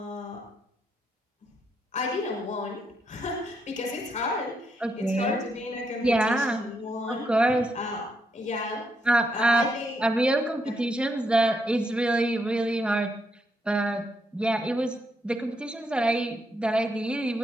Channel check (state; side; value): normal; both; correlation 0.78